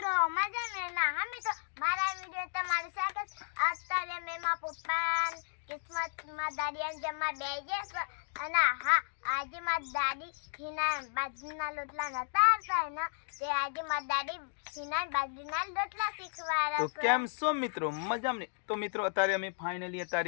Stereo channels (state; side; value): silent; right; digital silence